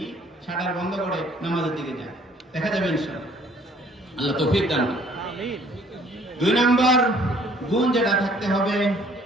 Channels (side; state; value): both; normal; correlation 0.58